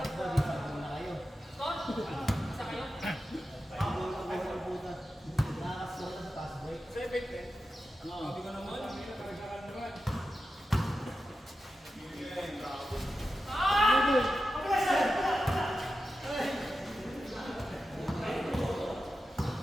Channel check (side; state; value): both; normal; correlation 0.91